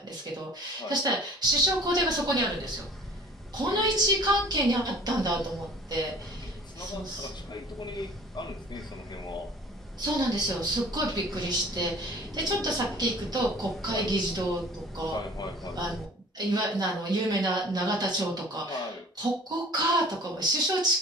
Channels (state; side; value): normal; both; correlation 0.47